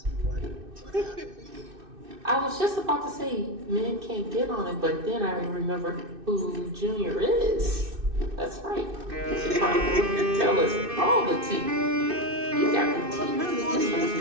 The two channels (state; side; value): late; left; 2.6 ms